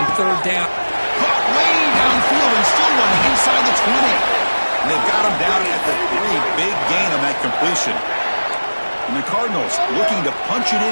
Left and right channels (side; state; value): both; inverted; correlation -1.00